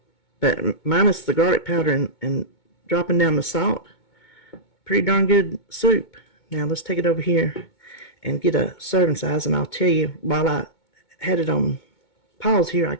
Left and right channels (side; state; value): right; late; 2.2 ms